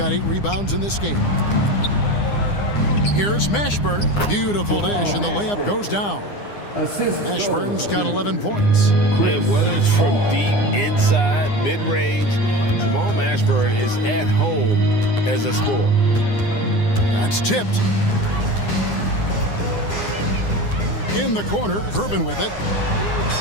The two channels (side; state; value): right; late; 9.8 ms